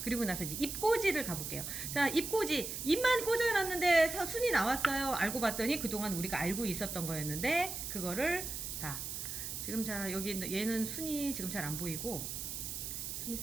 그리고 나서 이제 입꽂이를 가볼게요. 자, 입꽂이. 입만 꽂아놨는데 순이 나왔어요. 알고 봤더니 그동안 우리가 알고 있었던 거였는데 그거를 다 지금 자 여기 얘는 순이 지금 잘 안 보이고 순이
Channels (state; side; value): noise; right; hiss, 5 dB below the sound